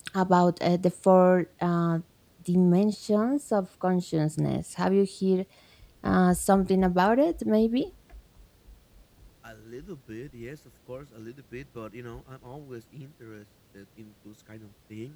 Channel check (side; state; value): both; identical; correlation 1.00